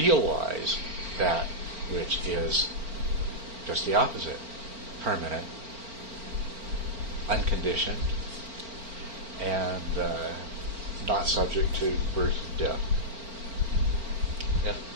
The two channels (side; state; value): left; late; 4.4 ms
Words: that which is just the opposite: permanent, unconditioned, and not subject to birth and death. Yep.